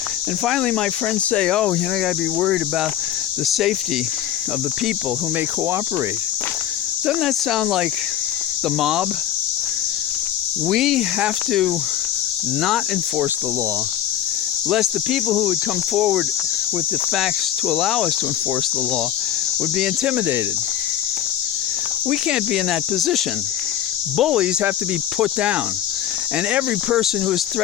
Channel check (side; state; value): right; quieter; 11.1 dB